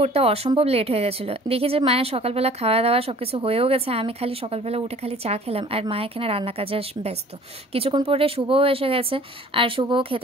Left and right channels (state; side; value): normal; both; correlation 0.49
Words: উঠতে অসম্ভব লেট হয়ে গেছিলো। দেখি যে মায়ের সকালবেলা খাওয়া দাওয়া সব কিছু হয়েও গেছে। আমি খালি সকালবেলা উঠে খালি চা খেলাম, আর মা এখানে রান্না কাজে ব্যস্ত। কিছুক্ষণ পরে শুভও এসে গেছে, আর শুভও